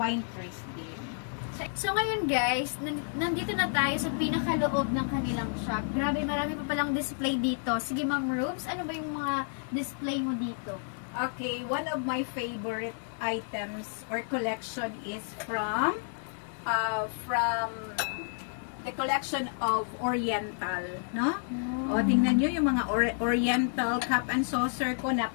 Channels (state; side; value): silent; right; 57 dB below the other